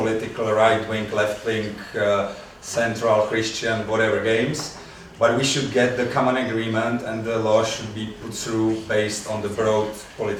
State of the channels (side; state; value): both; identical; correlation 1.00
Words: right-wing, left-wing, central, Christian, whatever games, but we should get the common agreement, and the law should be put through based on the broad